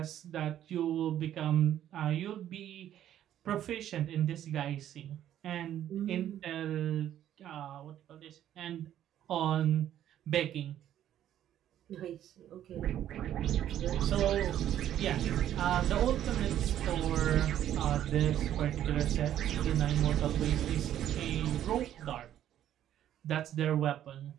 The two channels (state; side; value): quieter; left; 11.3 dB